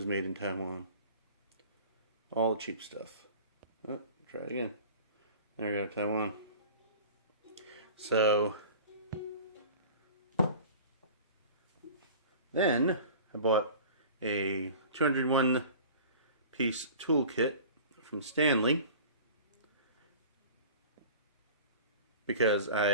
made in Taiwan. All the cheap stuff. Oh, try it again. There we go, Taiwan. So, then I bought a 201-piece toolkit from Stanley because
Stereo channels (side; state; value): both; inverted; correlation -0.41